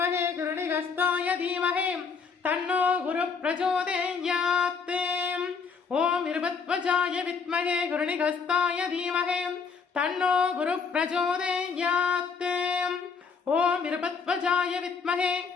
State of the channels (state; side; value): quieter; right; 5.5 dB